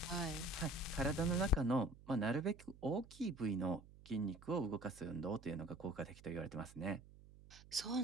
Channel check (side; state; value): right; noise; hum, 20 dB below the sound